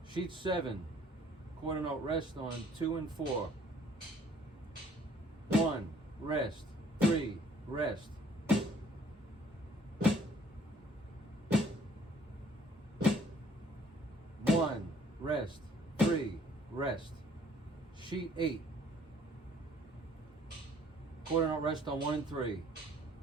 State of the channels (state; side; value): normal; both; correlation 0.59